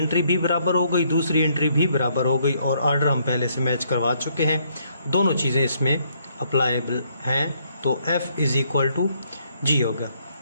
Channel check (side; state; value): both; inverted; correlation -0.70